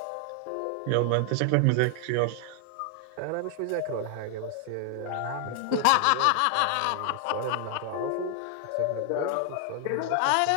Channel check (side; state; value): both; different; correlation 0.00